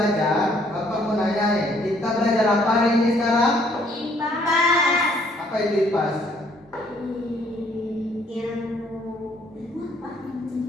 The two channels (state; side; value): normal; both; correlation 0.64